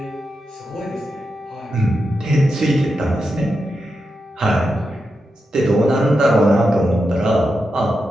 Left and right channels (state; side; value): normal; both; correlation 0.87